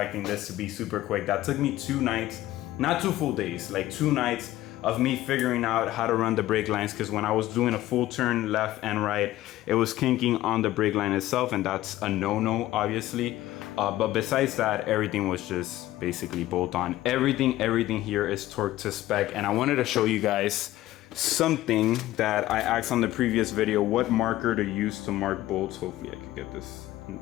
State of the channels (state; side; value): quieter; right; 15.4 dB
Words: this to be super quick. That took me 2 nights, not 2 full days, like 2 nights of me figuring out how to run the brake lines, because when I was doing a full turn left and right, it was kinking on the brake line itself, and that's a no-no, obviously. But besides that, everything was just basically bolt on. Everything here is torqued to spec, and I wanted to show you guys something that I asked on the previous video, what marker to use to mark bolts. Hopefully I can get this in